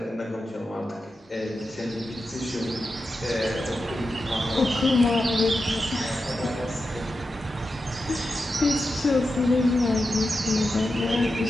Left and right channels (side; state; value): both; normal; correlation 0.90